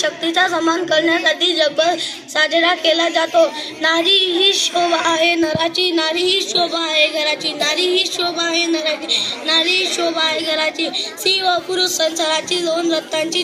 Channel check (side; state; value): both; identical; correlation 1.00